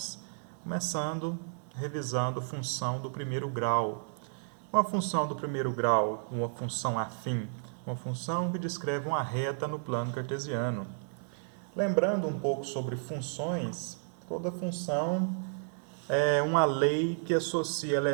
Começando, revisando função do primeiro grau. Uma função do primeiro grau, uma função afim, uma função que descreve uma reta no plano cartesiano. Lembrando um pouco sobre funções, toda função é uma lei que associa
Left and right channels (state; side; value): silent; left; 56 dB below the other